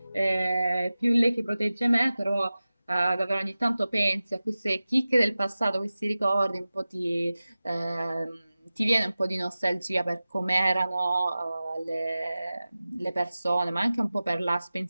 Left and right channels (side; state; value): both; inverted; correlation -0.96